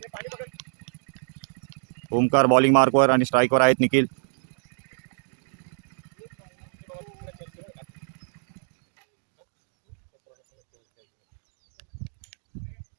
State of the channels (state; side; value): silent; left; digital silence